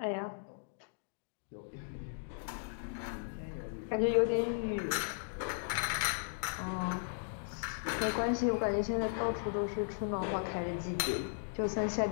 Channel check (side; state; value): right; silent; digital silence